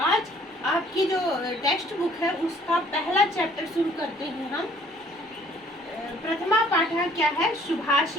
आपकी जो टेक्स्ट बुक है उसका पहला चैप्टर शुरू करते हैं हम. प्रथमा पाठा क्या है?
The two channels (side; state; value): both; normal; correlation 0.58